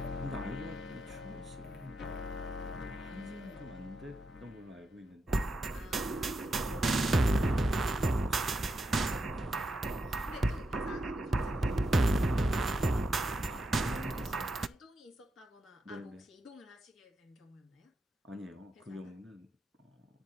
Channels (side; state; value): both; normal; correlation 0.85